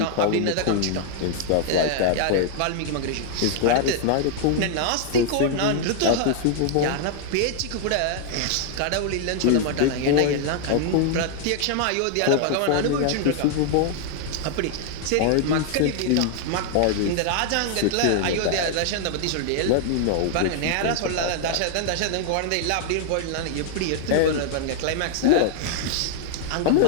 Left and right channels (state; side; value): different; both; correlation 0.00